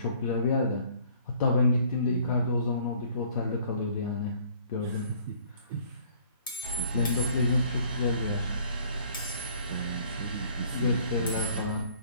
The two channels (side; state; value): both; inverted; correlation -0.58